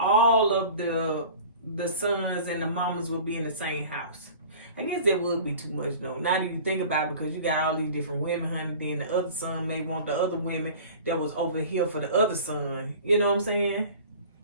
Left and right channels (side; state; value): both; inverted; correlation -0.42